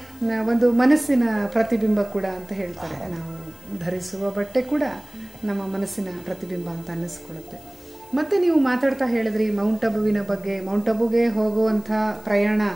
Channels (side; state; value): left; noise; hiss, 25 dB below the sound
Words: ಒಂದು ಮನಸ್ಸಿನ ಪ್ರತಿಬಿಂಬ ಕೂಡ ಅಂತ ಹೇಳ್ತಾರೆ. ನಾವು ಧರಿಸುವ ಬಟ್ಟೆ ಕೂಡ ನಮ್ಮ ಮನಸ್ಸಿನ ಪ್ರತಿಬಿಂಬ ಅಂತ ಅನ್ನಿಸ್ಕೊಳ್ಳುತ್ತೆ. ಮತ್ತು ನೀವು ಮಾತಾಡ್ತಾ ಹೇಳಿದ್ರಿ ಮೌಂಟ್ ಅಬುವಿನ ಬಗ್ಗೆ. ಮೌಂಟ್ ಅಬುಗೆ ಹೋಗುವಂಥ ಪ್ರಯಾಣ